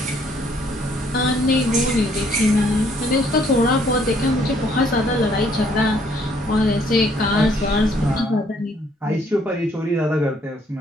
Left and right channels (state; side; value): normal; both; correlation 0.65